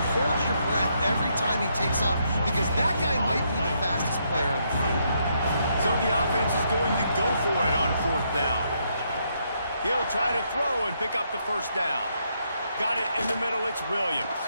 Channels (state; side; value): inverted; both; correlation -0.76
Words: hold your breath every time he takes off because that guy might be the fastest player on the field. So the offense is going to go for it on 4th down. He'll try to throw and pick up the first down. Got it in the middle. It's Williams.